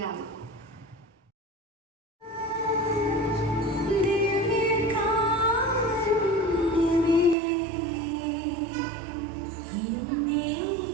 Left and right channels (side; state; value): left; drops out; at 7.4 s